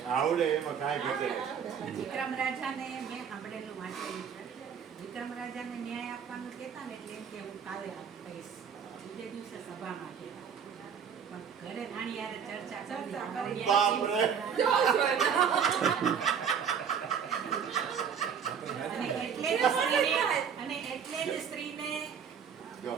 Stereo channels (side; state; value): left; quieter; 7.4 dB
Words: આવડે, એમાં કાંઈ ઘટે નહીં. વિક્રમ રાજાને મેં સાંભળેલું વાંચેલું છે. વિક્રમ રાજાને ન્યાય આપવાનું કહેતા ને એટલે એમ કે હું કાલે આપીશ, બીજે દિવસે સભામાં કહેતા. પણ ઘરે રાણી યારે ચર્ચા કરી. બાપરે. અને એટલે જ સ્ત્રીને